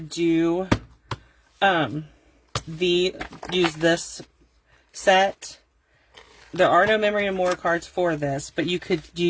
do, use this set. There are no memory and more cards for this, but you could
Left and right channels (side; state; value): both; identical; correlation 1.00